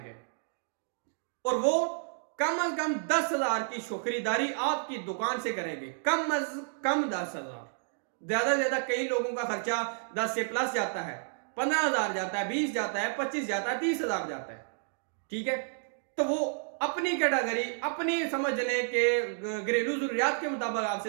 और वो कम अज कम 10,000 की खरीदारी आपकी दुकान से करेंगे। कम अज कम 10,000, ज्यादा से ज्यादा कई लोगों का खर्चा 10 से प्लस जाता है, 15,000 जाता है, 20 जाता है, 25 जाता है, 30,000 जाता है। ठीक है, तो वो अपनी कैटेगरी, अपनी समझ लें कि घरेलू जरूरियात के मुताबिक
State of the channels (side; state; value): left; silent; digital silence